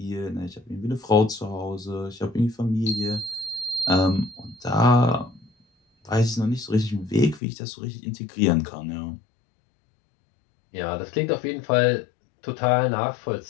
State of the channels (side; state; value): right; drops out; at 7.4 s